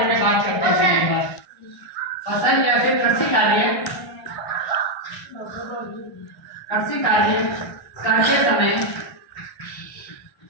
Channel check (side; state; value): right; late; 1.3 ms